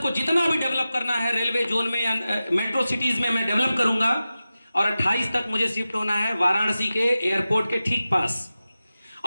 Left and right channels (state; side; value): inverted; both; correlation -0.94